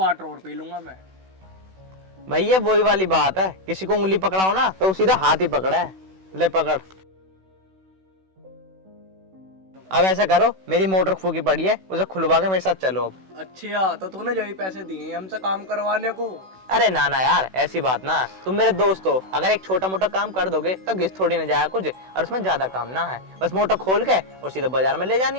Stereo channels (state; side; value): late; left; 16 ms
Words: और पी लूंगा मैं। भैया वही वाली बात है, किसी को उंगली पकड़ाओ ना तो सीधा हाथ ही पकड़ा है। ले पकड़। अब ऐसा करो, मेरी मोटर फूकी पड़ी है, उसे खुलवा के मेरे साथ चलो अब। अच्छा तो तूने जो ही पैसे दिए हमसे काम करवाने को। अरे ना ना यार ऐसी बात ना, तुम मेरे दोस्त हो, अगर एक छोटा मोटा काम कर दोगे तो घिस थोड़ी ना जाएगा कुछ, और उसमें ज्यादा काम ना है, बस मोटर खोल के और सीधा बाजार में ले